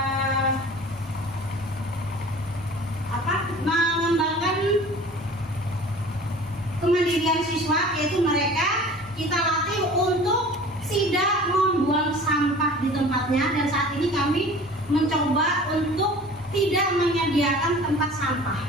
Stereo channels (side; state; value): both; normal; correlation 0.43